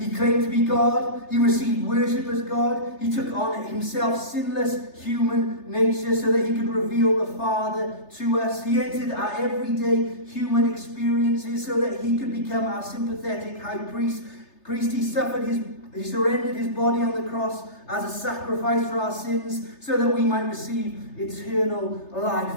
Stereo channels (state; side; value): late; right; 3.3 ms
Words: claimed to be God. He received worship as God. He took on himself sinless human nature so that he could reveal the Father to us. He entered our everyday human experiences so that he could become our sympathetic high priest. He surrendered his body on the cross as a sacrifice for our sins so that we might receive eternal life.